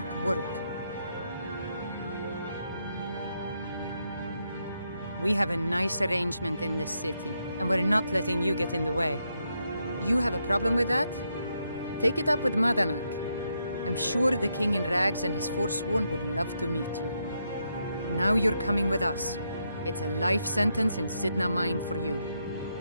work. We have a nice arrangement in this city, and we're not letting you get in the way. You have a problem with that? Take it up with Madanak. I'm sure the King in Rags and his Forsworn would love to meet you. Now you're coming with us. It's a life sentence in Sidna Mine for you.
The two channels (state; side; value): inverted; both; correlation -0.80